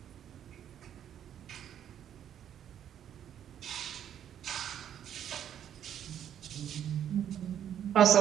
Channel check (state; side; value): quieter; left; 9.8 dB